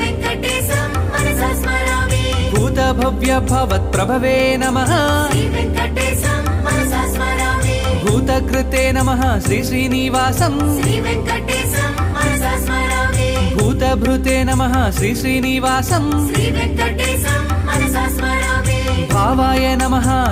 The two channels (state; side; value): identical; both; correlation 1.00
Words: వెంకటేశం మనసా స్మరామి భూత భవ్య భవత్ ప్రభవే నమః శ్రీ వెంకటేశం మనసా స్మరామి భూతకృతే నమః శ్రీ శ్రీనివాసం శ్రీ వెంకటేశం మనసా స్మరామి భూతభృతే నమః శ్రీ శ్రీనివాసం శ్రీ వెంకటేశం మనసా స్మరామి భావాయ నమః